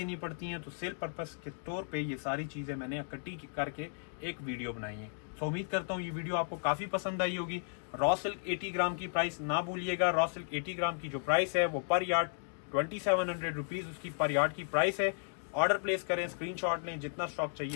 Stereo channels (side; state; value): right; silent; digital silence